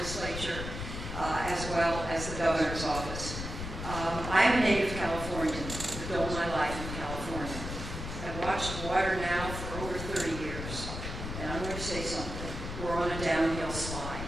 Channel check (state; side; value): noise; left; rumble, 6 dB below the sound